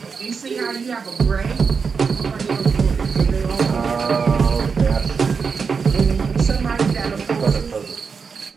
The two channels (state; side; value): quieter; left; 5.5 dB